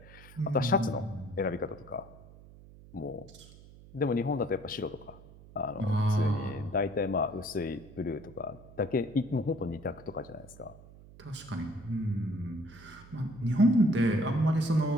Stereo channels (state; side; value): noise; right; hum, 20 dB below the sound